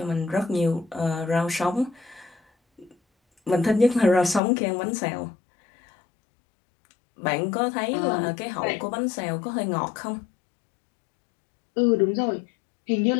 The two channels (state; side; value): drops out; right; at 4.4 s